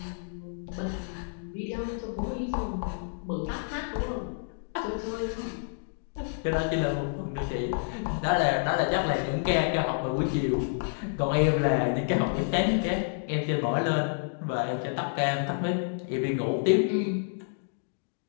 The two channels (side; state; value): right; silent; digital silence